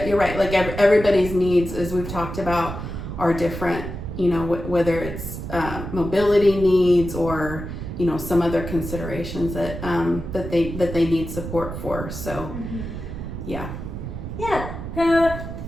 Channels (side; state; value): right; noise; rumble, 7 dB below the sound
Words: you're right. Like everybody's needs, as we've talked about, are different. Whether it's mobility needs or some other considerations that they need support for. So, yeah.